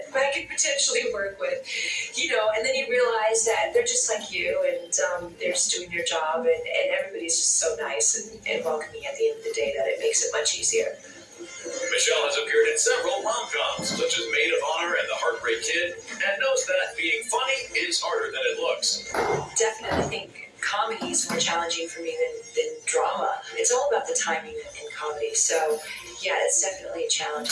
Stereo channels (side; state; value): both; identical; correlation 1.00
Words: I could potentially work with, and then you realize that they're just like you, and they're just doing their job, and everybody's just so nice and welcoming at the end of the day that it makes it much easier. Michelle has appeared in several rom-coms, such as Maid of Honor and The Heartbreak Kid, and knows that being funny is harder than it looks. Definitely think comedy is more challenging for me than drama. It's all about the timing in comedy, so yeah, it's definitely a challenge,